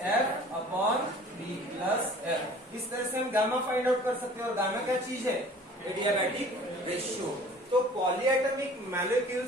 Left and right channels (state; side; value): normal; both; correlation 0.48